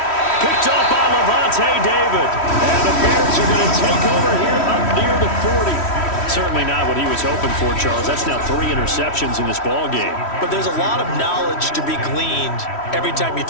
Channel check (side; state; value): right; late; 3.1 ms